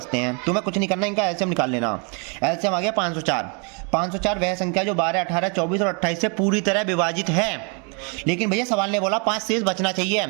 हैं। तुम्हें कुछ नहीं करना, इनका एलसीएम निकाल लेना। एलसीएम आ गया 504। 504 वह संख्या जो 12, 18, 24 और 28 से पूरी तरह विभाजित है। लेकिन भैया सवाल ने बोला 5 शेष बचना चाहिए।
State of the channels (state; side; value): quieter; left; 36.0 dB